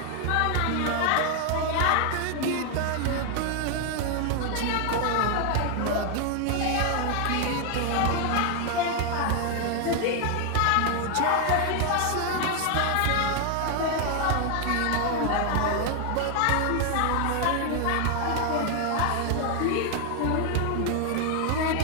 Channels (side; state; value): both; different; correlation 0.01